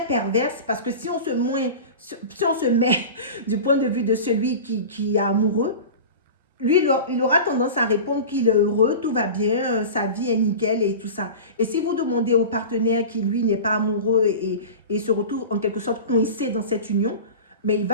perverse parce que si on se met du point de vue de celui qui est amoureux, lui, il aura tendance à répondre qu'il est heureux, tout va bien, sa vie est nickel et tout ça. Et si vous demandez au partenaire qui, lui, n'est pas amoureux et se retrouve en quelque sorte coincé dans cette union, mais il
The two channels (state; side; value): inverted; both; correlation -0.33